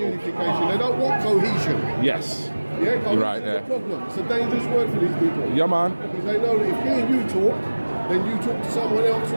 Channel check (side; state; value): both; inverted; correlation -1.00